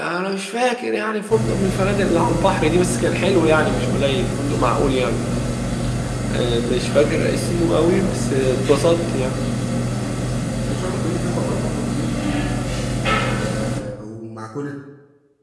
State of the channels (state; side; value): identical; both; correlation 1.00